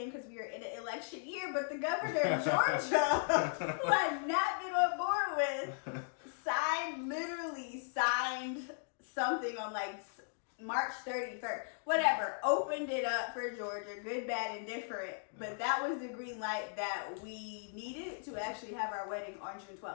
because we are in an election year, but the governor of Georgia, who I've not been on board with, signed something on like March 31st, whatever, opened it up for Georgia, good, bad, and different. But that was the green light that we needed to actually have our wedding on June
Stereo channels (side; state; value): right; silent; digital silence